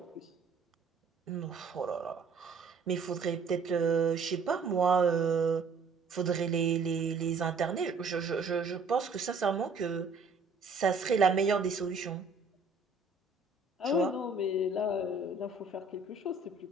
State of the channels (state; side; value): quieter; left; 4.1 dB